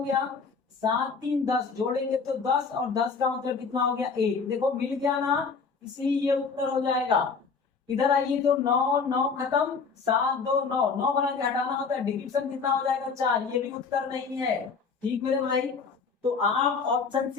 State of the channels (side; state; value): right; quieter; 5.2 dB